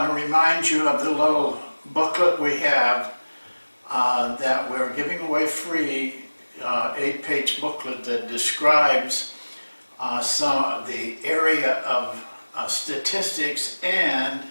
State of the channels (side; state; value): both; inverted; correlation -1.00